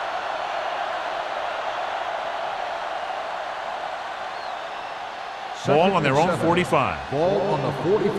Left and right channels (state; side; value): identical; both; correlation 1.00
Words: Ball on their own 45. Ball on the